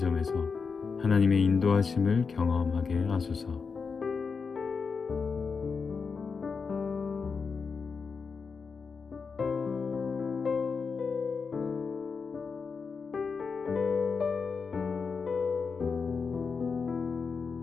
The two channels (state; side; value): quieter; right; 5.3 dB